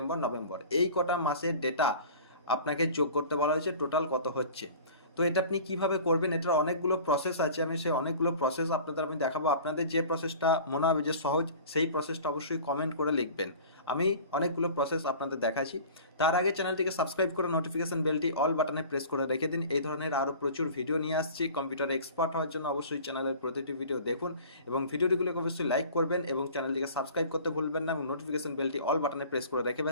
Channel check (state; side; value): inverted; both; correlation -0.43